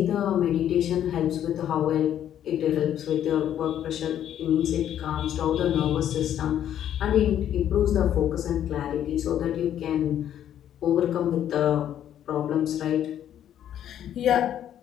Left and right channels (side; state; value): right; quieter; 10.6 dB